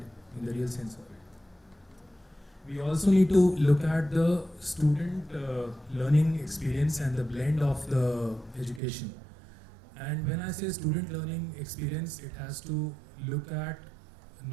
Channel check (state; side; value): drops out; left; at 8.8 s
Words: in the real sense of it. We also need to look at the student learning experience and the blend of the education. And when I say student learning experience, it has to look at